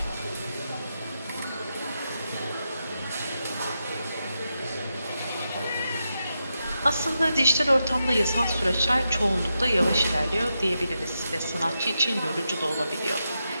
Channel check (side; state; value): both; inverted; correlation -0.87